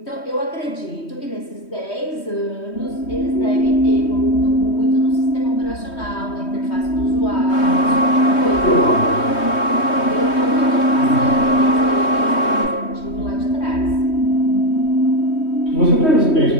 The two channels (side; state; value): right; late; 3.2 ms